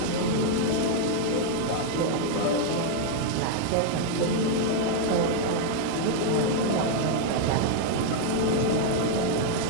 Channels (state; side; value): different; both; correlation 0.00